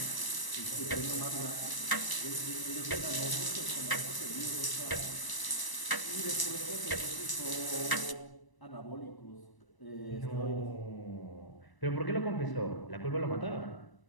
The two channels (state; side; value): late; right; 1.0 ms